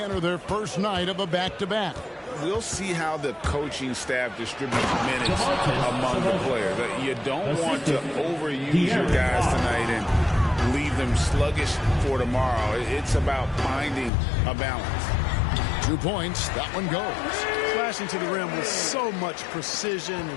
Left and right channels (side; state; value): right; drops out; at 14.1 s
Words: enter their first night of a back-to-back? We'll see how the coaching staff distributes minutes among the players. You don't want to overuse your guys tonight and leave them sluggish for tomorrow. It's about finding a balance. 2 points. That one goes. Flashing to the rim with so much precision